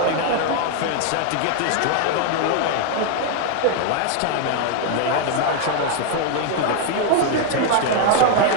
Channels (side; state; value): both; different; correlation 0.00